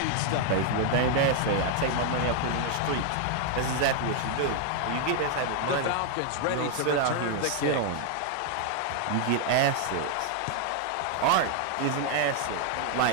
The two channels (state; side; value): different; both; correlation 0.00